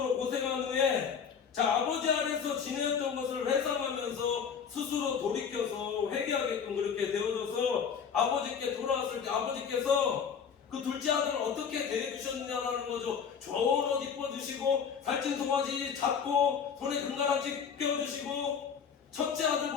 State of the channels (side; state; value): right; quieter; 6.9 dB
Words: 고생한 후에 아버지 아래서 지내었던 것을 회상하면서 스스로 돌이켜서 회개하게끔 그렇게 되어져서 아버지께 돌아왔을 때 아버지께서 그 둘째 아들을 어떻게 대해주셨느냐라는 거죠. 좋은 옷 입어주시고 살찐 송아지 잡고 손에 금가락지 껴주시고 첫째